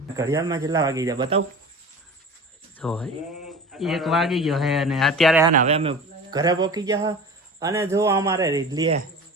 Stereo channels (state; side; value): normal; both; correlation 0.36